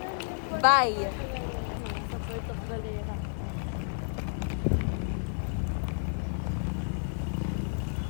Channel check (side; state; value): right; silent; digital silence